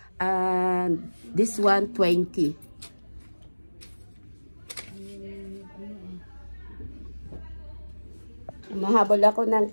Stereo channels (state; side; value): inverted; both; correlation -1.00